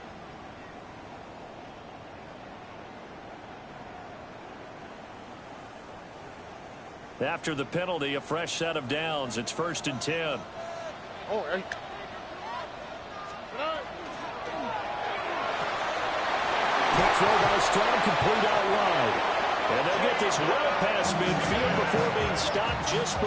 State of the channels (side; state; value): both; identical; correlation 1.00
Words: After the penalty, a fresh set of downs. It's 1st and 10. Quick throw by Stroud, complete out wide. And they'll get this well past midfield before being stopped just